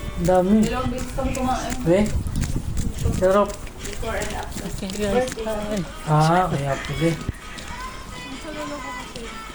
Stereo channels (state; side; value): identical; both; correlation 1.00